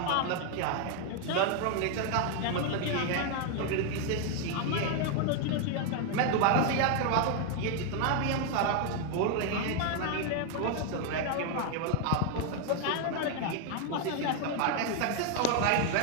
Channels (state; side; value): different; both; correlation 0.01